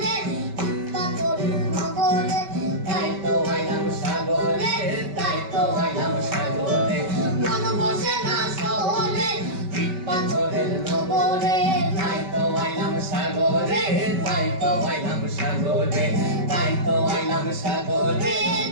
পাথরের নগরে তাই তো আইলাম সাগরে তাই তো আইলাম সাগরে মন বসে না শহরে ইট পাথরের নগরে তাই তো আইলাম সাগরে তাই তো আইলাম সাগরে তাই তো আইলাম সাগরে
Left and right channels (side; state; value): left; late; 5.2 ms